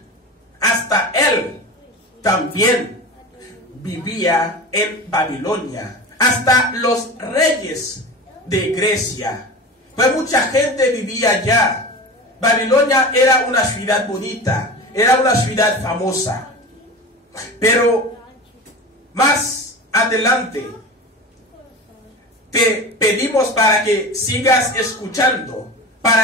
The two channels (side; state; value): both; normal; correlation 0.31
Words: hasta él también vivía en Babilonia, hasta los reyes de Grecia, pues mucha gente vivía allá. Babilonia era una ciudad bonita, era una ciudad famosa, pero más adelante te pedimos para que sigas escuchando,